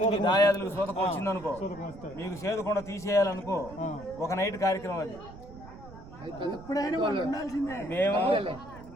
మీ దాయాదులకు సూతకం వచ్చిందనుకో, మీకు సేదకుండా తీసేయాలనుకో, ఒక నైట్ కార్యక్రమం అది. మేము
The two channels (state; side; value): noise; right; rumble, 17 dB below the sound